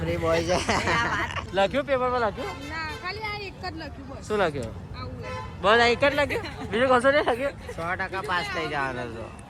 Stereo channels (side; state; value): both; identical; correlation 1.00